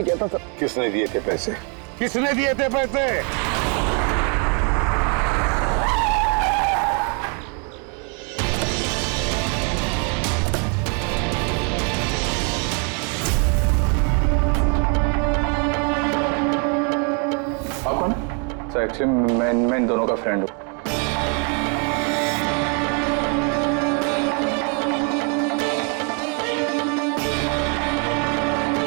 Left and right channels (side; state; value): left; quieter; 37.3 dB